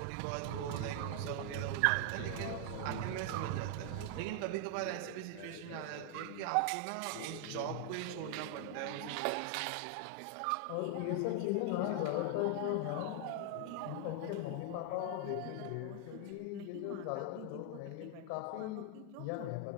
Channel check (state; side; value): different; both; correlation 0.00